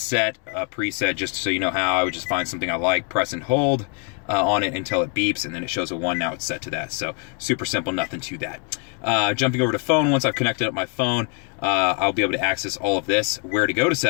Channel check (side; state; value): right; quieter; 38.9 dB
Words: a preset, just so you know how, I would just find something I like, press and hold on it until it beeps, and then it shows a 1, now it's set to that. So super simple, nothing to that. Jumping over to phone, once I've connected up my phone, I'll be able to access all of this. Where to go to